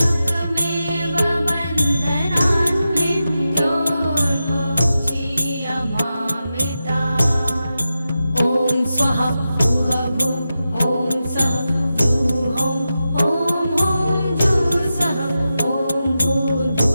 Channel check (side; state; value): both; inverted; correlation -0.91